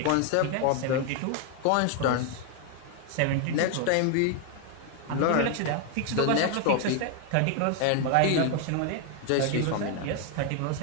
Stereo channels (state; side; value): different; both; correlation 0.00